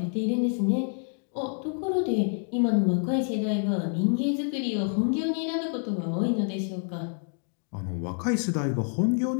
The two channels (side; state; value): right; silent; 56 dB below the other